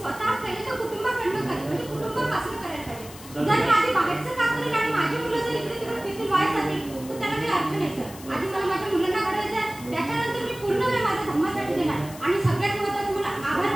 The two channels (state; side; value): noise; left; hiss, 17 dB below the sound